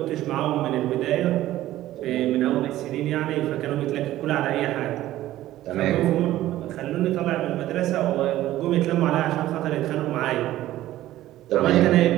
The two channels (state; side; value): quieter; left; 14.6 dB